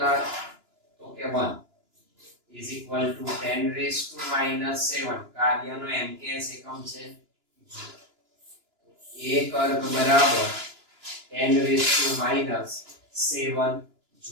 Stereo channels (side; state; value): left; late; 2.9 ms